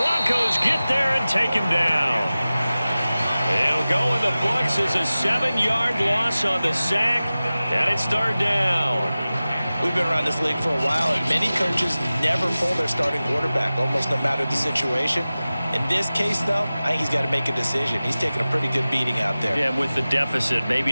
get there and take him down. It'll go in the books as a 7-yard loss on the sack. And it's third down. We've been around this league for a while, and many coaches never pull their starting quarterback, almost no matter the situation. In this case, though, I think he's got to make a decision. He's taking a pretty good beating out there. Yeah, with the deficit,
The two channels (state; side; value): inverted; both; correlation -0.97